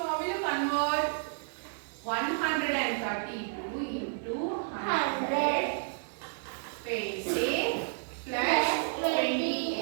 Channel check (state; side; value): silent; left; digital silence